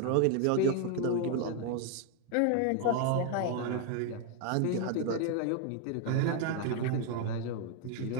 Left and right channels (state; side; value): different; both; correlation 0.01